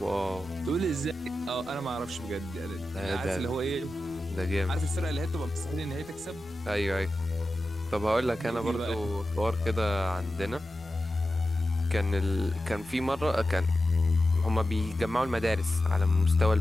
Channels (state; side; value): noise; left; rumble, 24 dB below the sound